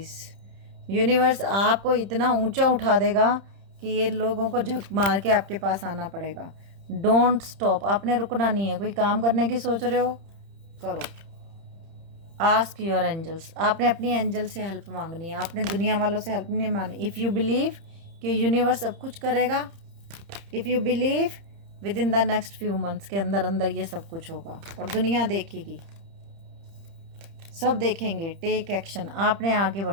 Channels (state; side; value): late; left; 31 ms